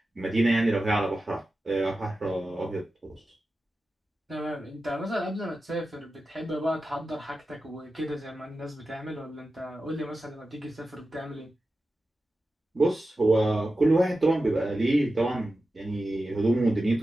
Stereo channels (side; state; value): both; normal; correlation 0.93